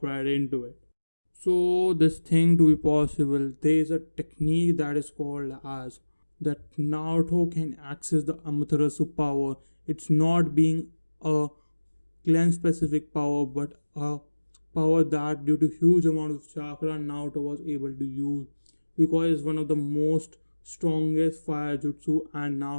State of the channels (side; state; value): both; inverted; correlation -1.00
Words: right into it. So this thing to be possible, there is a technique that is called as that Naruto can access the Amaterasu power. It's not being a clan specific power, but a power that due to huge amount of chakra Naruto was able to use because it's one of the most strongest fire jutsu, and